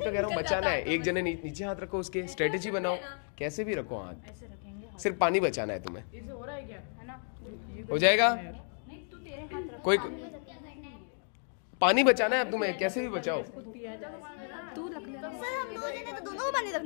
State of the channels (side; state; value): right; silent; 56 dB below the other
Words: कह रहा हूँ, बचाना है। एक जने नीचे हाथ रखो, उसके स्ट्रेटेजी बनाओ, कैसे भी रखो हाथ, सिर्फ पानी बचाना है तुम्हें। इससे हो रहा है क्या? है ना? हो जाएगा। कोई पानी बचाना है अब तुम्हें, कैसे भी बचाओ। दोनों को पानी